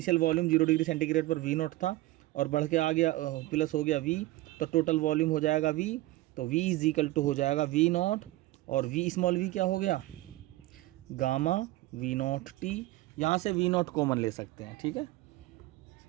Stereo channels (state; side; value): quieter; left; 18.0 dB